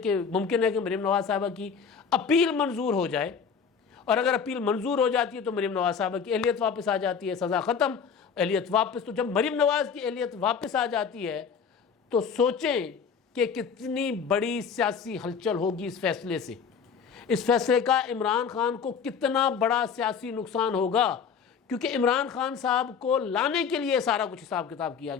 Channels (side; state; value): right; quieter; 6.5 dB